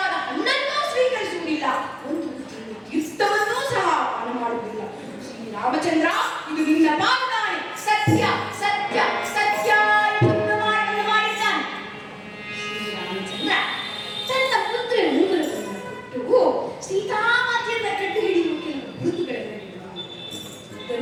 ಹಣ್ಣನ್ನೂ ಸ್ವೀಕರಿಸುವುದಿಲ್ಲ, ಒಂದು ತೀರ್ಥವನ್ನೂ ಸಹ ಪಾನ ಮಾಡುವುದಿಲ್ಲ. ಶ್ರೀರಾಮಚಂದ್ರ, ಇದು ನಿನ್ನ ಪಾದಾನೆ, ಸತ್ಯ ಸತ್ಯ ಸತ್ಯ ಎಂದು ಪ್ರಮಾಣವನ್ನು ಮಾಡಿದ್ದಾನೆ. ಶ್ರೀರಾಮಚಂದ್ರ ತನ್ನ ಪುತ್ರ ಉಂಗುರವನ್ನು ಕೊಟ್ಟು ಸೀತಾಮಾತೆಯನ್ನ ಕಂಡು ಹಿಡಿಯುವ ಕೆಲವು ಗುರುತುಗಳನ್ನು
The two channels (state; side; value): identical; both; correlation 1.00